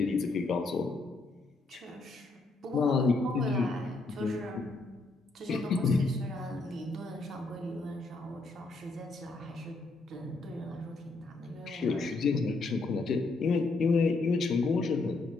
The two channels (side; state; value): right; quieter; 3.4 dB